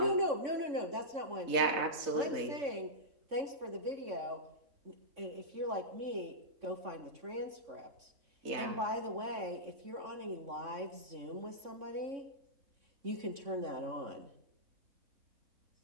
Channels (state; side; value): late; left; 3.6 ms